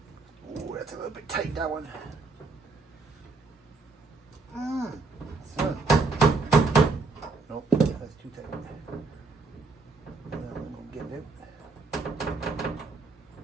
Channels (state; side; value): quieter; left; 3.9 dB